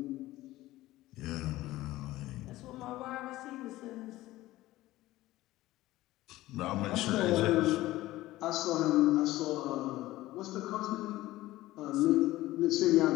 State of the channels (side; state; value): right; quieter; 16.8 dB